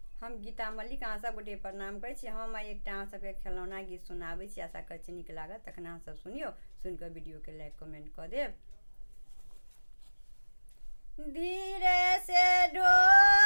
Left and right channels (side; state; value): both; inverted; correlation -1.00